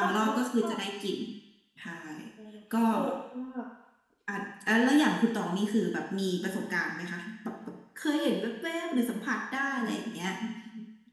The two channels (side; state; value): both; identical; correlation 1.00